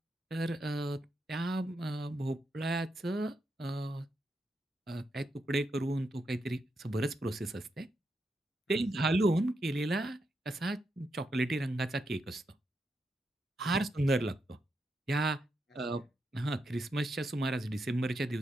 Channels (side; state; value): both; normal; correlation 0.83